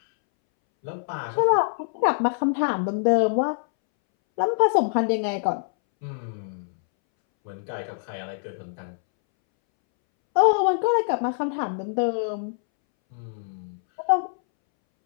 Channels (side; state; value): right; silent; 62 dB below the other